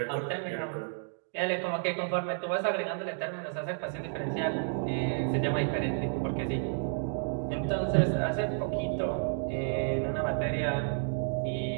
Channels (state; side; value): silent; left; digital silence